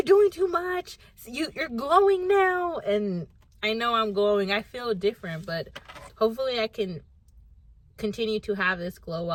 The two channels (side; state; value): both; identical; correlation 1.00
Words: doing too much, you're glowing now. And I know I'm glowing, I feel different, but hopefully I can continue to have this glow